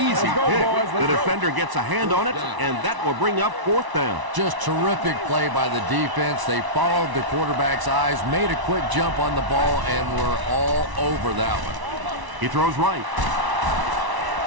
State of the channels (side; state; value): left; late; 1.0 ms